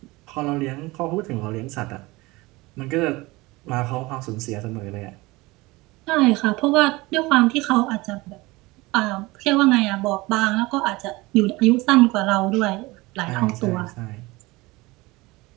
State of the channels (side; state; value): left; quieter; 21.9 dB